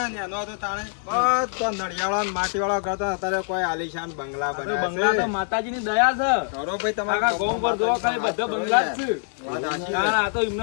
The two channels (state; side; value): silent; right; digital silence